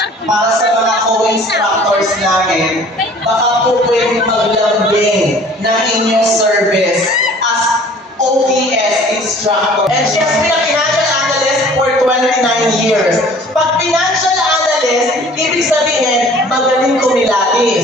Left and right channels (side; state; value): both; normal; correlation 0.50